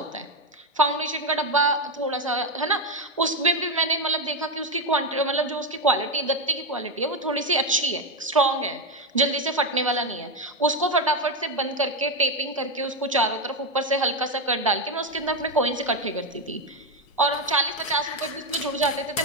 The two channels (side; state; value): both; normal; correlation 0.09